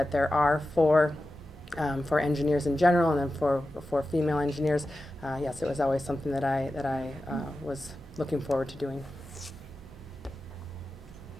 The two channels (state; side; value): normal; both; correlation 0.93